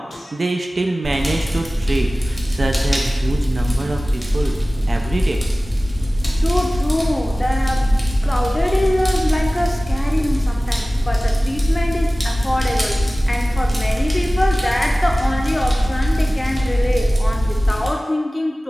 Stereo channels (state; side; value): normal; both; correlation 0.97